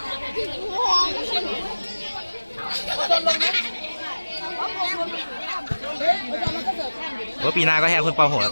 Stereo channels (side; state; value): both; inverted; correlation -1.00